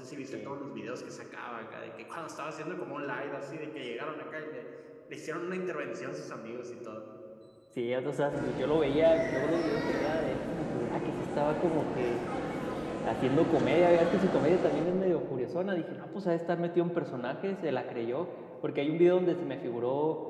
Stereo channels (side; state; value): both; identical; correlation 1.00